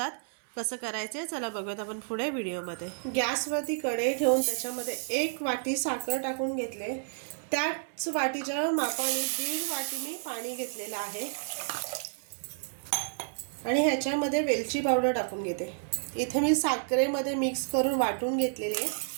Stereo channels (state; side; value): silent; left; 57 dB below the other